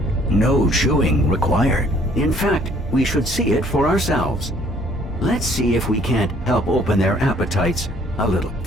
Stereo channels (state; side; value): normal; both; correlation 0.60